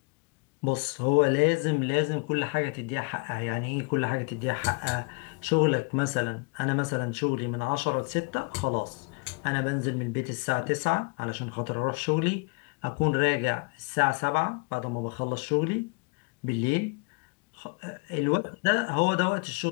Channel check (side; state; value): right; quieter; 31.9 dB